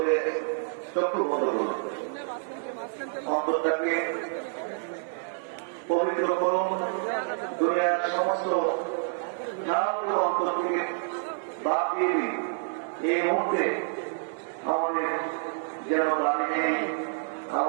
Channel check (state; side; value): silent; left; digital silence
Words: চক্ষু বন্ধ করুন, অন্তরটাকে পবিত্র করুন, দুনিয়ার সমস্ত অন্তর থেকে বাদ দিয়ে দিন। এই মুহূর্তে আমাদের যেন বাড়ি নেই,